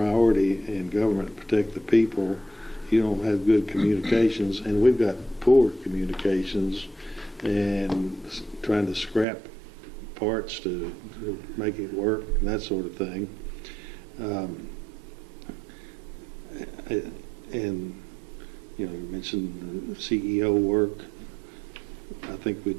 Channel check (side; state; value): left; drops out; at 9.2 s